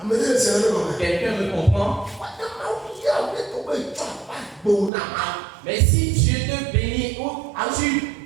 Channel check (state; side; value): drops out; left; at 4.9 s